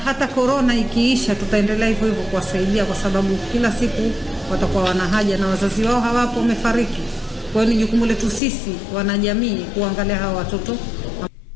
corona ikiisha tutaendelea hivyo hivyo kuwasaidia, kwa sababu kila siku watakuwa wana haja na wazazi wao hawapo, wamefariki. Kwa hiyo ni jukumu letu sisi wanajamii kuangalia hawa watoto.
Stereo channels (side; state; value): right; drops out; at 8.4 s